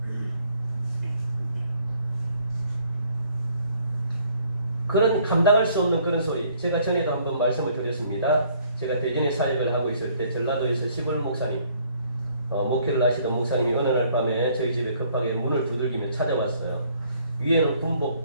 그런 감당할 수 없는 그런 소리. 제가 전에도 한번 말씀을 드렸습니다. 제가 대전에 사역을 하고 있을 때 전라도에서 시골 목사님, 목회를 하시던 목사님이 어느 날 밤에 저희 집에 급하게 문을 두들기며 찾아왔어요. 위에는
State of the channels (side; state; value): both; inverted; correlation -0.62